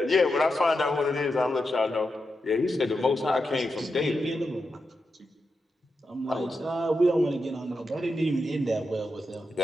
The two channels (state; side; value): normal; both; correlation 0.87